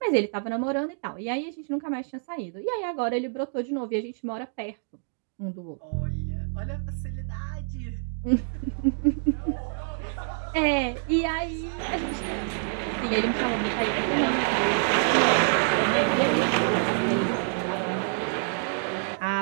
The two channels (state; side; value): silent; left; digital silence